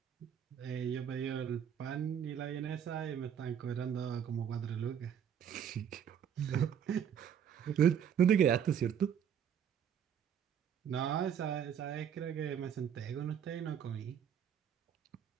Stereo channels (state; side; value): quieter; left; 8.5 dB